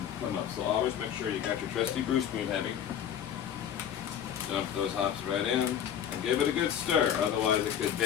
come up. So always make sure you got your trusty brew spoon heavy. Dump those hops right in and give it a good stir. Otherwise, it could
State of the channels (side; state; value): right; quieter; 9.3 dB